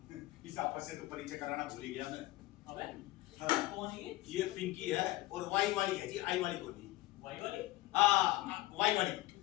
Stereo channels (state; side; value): quieter; right; 17.8 dB